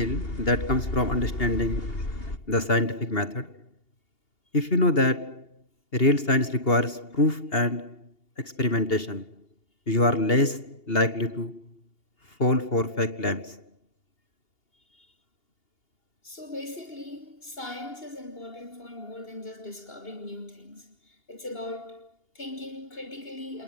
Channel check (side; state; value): right; late; 2.8 ms